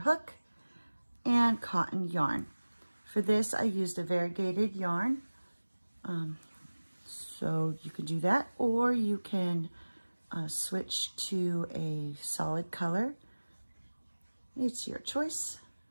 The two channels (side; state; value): both; inverted; correlation -1.00